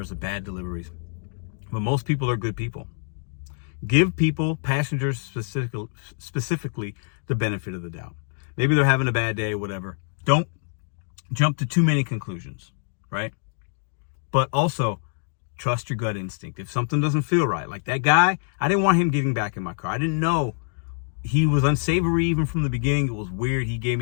the bad deliveries. But most people are good people. Give people, passengers specifically, the benefit of the doubt. Maybe they're having a bad day, whatever. Don't jump to too many conclusions, right? But also, trust your gut instinct. If something doesn't feel right, like that guy, I didn't want him getting back in my car. I didn't know. He was unsavory even from the beginning. It was weird. He gave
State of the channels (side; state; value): right; silent; digital silence